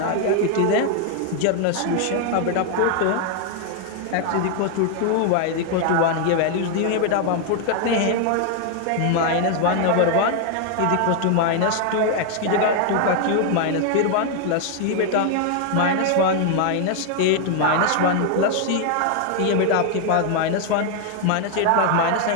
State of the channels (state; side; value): different; both; correlation 0.00